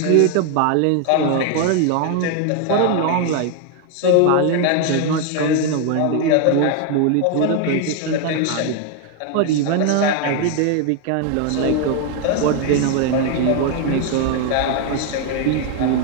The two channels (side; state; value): both; different; correlation 0.01